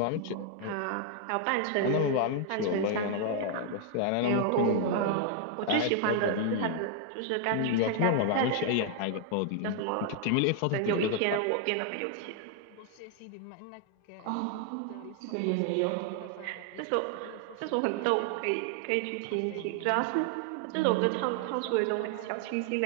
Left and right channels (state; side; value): different; both; correlation 0.00